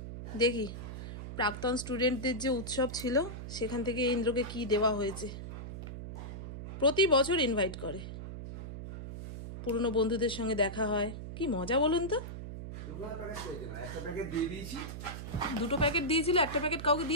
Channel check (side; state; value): right; noise; hum, 8 dB below the sound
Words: দেখি প্রাক্তন স্টুডেন্টদের যে উৎসব ছিল সেখান থেকে ইন্দ্রকে কি দেওয়া হয়েছে। প্রতি বছর ইনভাইট করে, পুরনো বন্ধুদের সঙ্গে দেখা হয়, কি মজা বলুন তো। 2টো প্যাকেট দিয়েছিল, 1টা প্যাকেট কাউকে